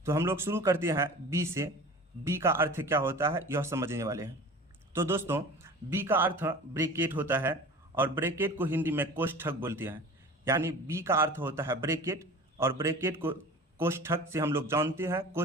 तो हम लोग शुरू करते हैं बी से। बी का अर्थ क्या होता है यह समझने वाले हैं। तो दोस्तों बी का अर्थ ब्रैकेट होता है और ब्रैकेट को हिंदी में कोष्ठक बोलते हैं। यानी बी का अर्थ होता है ब्रैकेट और ब्रैकेट को कोष्ठक से हम लोग जानते हैं,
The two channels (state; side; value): normal; both; correlation 0.39